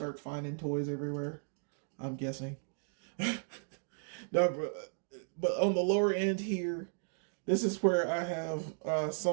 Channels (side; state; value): left; silent; digital silence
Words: finding toys everywhere, I'm guessing. No, but on the lower end here, this is where I have